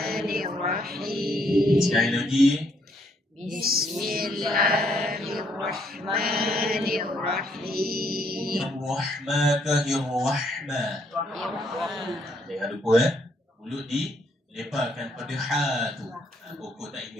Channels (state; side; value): normal; both; correlation 0.70